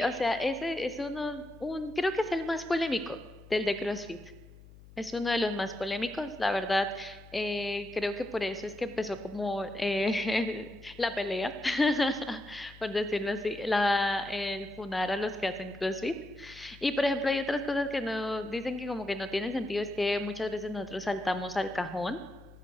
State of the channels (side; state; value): left; noise; hum, 21 dB below the sound